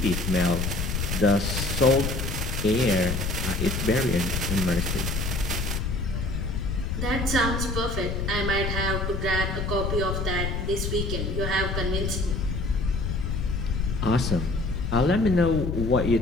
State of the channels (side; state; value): left; noise; rumble, 1 dB below the sound